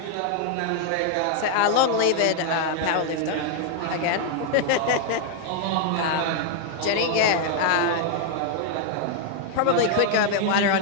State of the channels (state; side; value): different; both; correlation 0.00